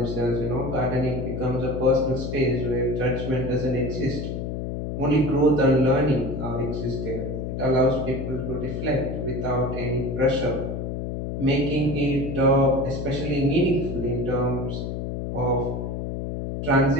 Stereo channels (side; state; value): left; noise; hum, 4 dB below the sound